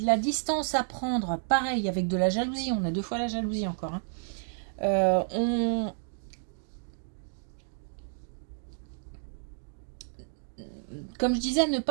la distance à prendre. Pareil, avec de la jalousie. On a 2 fois la jalousie encore. Hein. Comme je disais, ne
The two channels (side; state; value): left; silent; digital silence